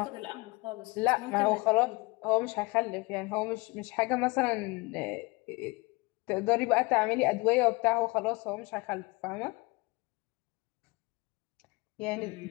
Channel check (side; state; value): right; quieter; 25.3 dB